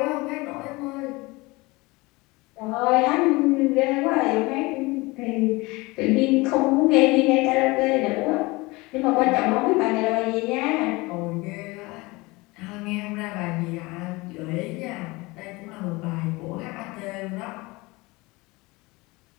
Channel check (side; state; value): right; quieter; 23.3 dB